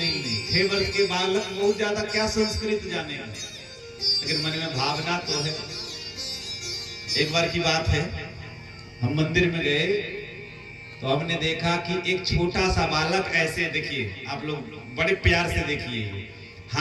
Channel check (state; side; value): identical; both; correlation 1.00